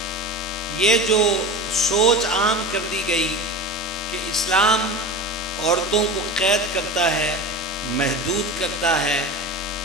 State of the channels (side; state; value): both; normal; correlation 0.30